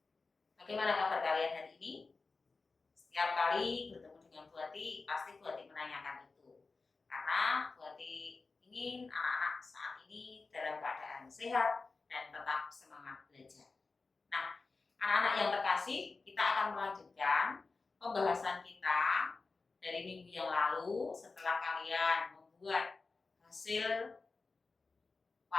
Bagaimana kabar kalian hari ini? Setiap kali bertemu dengan Bu Ati, pasti Bu Ati menanyakan itu. Karena Bu Ati ingin anak-anak saat ini dalam keadaan sehat dan tetap semangat belajar. Nah, anak-anak yang terkasih, kita akan melanjutkan pembahasan kita dari minggu yang lalu setelah kalian membuat hasil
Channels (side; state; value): right; quieter; 4.0 dB